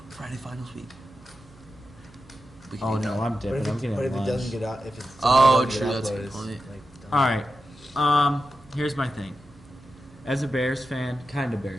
week. We can Oh do no, that. I'm But dipping. if, I'm it, getting but if it lunch. doesn't get out, if it's Oh, doesn't true, get that's a uploaded, good it's, point. done. All right. Here's my thing. As a Bears fan, kind of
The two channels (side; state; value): right; noise; hum, 25 dB below the sound